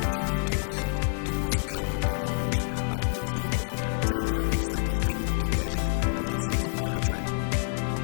тооллого, төвөр судалгаануудыг явуулж, албан ёсны болон захиргааны статистикийн мэдээ тайлаг боловсруулан гаргаж байна.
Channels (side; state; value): right; silent; digital silence